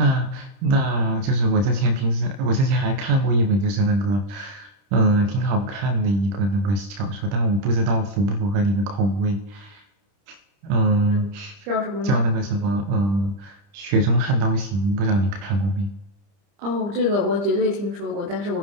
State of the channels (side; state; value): left; late; 30 ms